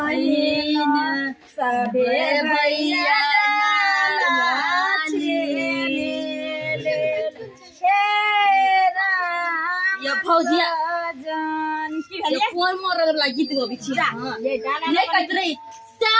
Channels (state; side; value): identical; both; correlation 1.00